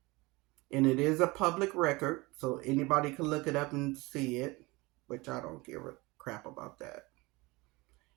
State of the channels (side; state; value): left; quieter; 23.3 dB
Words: And it is a public record, so anybody can look it up and see it, which I don't give a crap about that.